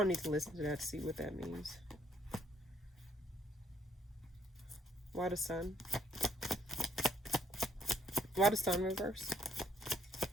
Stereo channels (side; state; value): both; normal; correlation 0.68